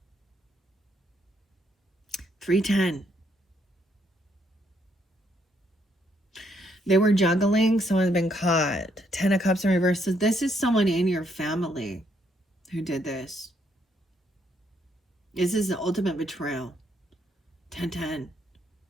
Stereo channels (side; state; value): both; normal; correlation 0.73